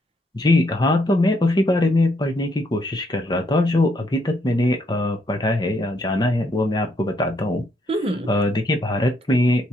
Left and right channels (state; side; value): normal; both; correlation 0.73